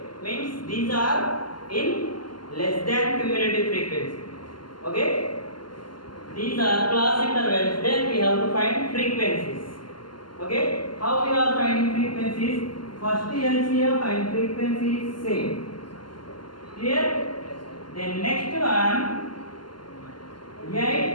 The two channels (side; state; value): right; late; 0.71 ms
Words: means these are in less than cumulative frequency. Okay, these are class intervals. Then we have to find frequencies. Okay, how we are finding frequencies? First LCM and frequency is same. Clear? Then next one